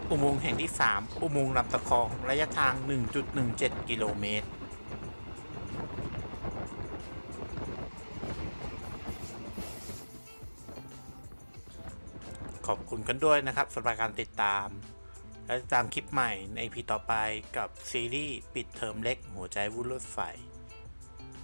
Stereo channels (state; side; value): inverted; both; correlation -1.00